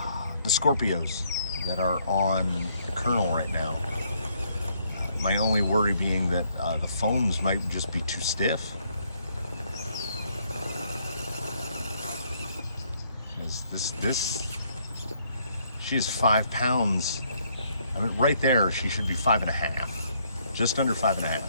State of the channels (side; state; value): both; inverted; correlation -0.69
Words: Scorpios that are on Colonel right now. My only worry being that the foams might just be too stiff. Because she is 5 pounds. I mean, right there, she should be 5.5, just under 5.5.